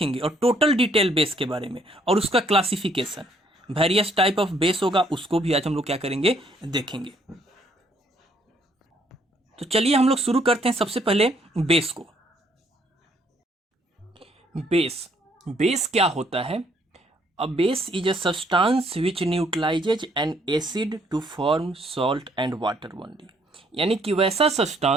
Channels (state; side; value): normal; both; correlation 0.67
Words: और टोटल डिटेल बेस के बारे में और उसका classification, various type of base होगा उसको भी आज हम लोग क्या करेंगे, देखेंगे। तो चलिए हम लोग शुरू करते हैं सबसे पहले बेस को। बेस क्या होता है? A base is a substance which neutralizes an acid to form salt and water only। यानी कि वैसा